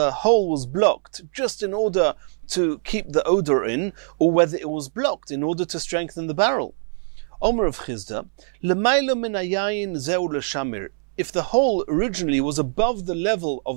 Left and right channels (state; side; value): silent; left; 63 dB below the other